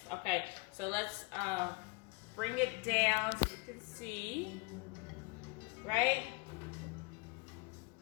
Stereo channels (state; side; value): quieter; right; 29.8 dB